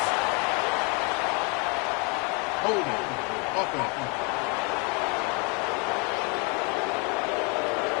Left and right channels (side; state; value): right; quieter; 33.1 dB